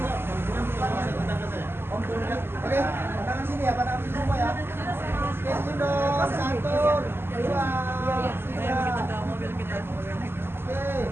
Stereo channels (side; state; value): left; late; 0.11 ms